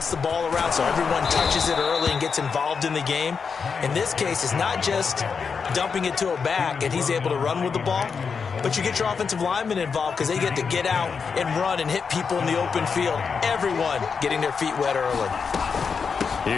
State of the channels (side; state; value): right; quieter; 5.7 dB